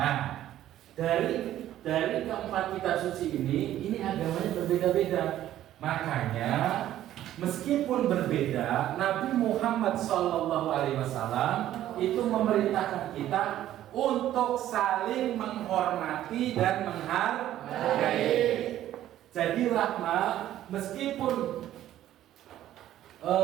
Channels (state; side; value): quieter; left; 12.7 dB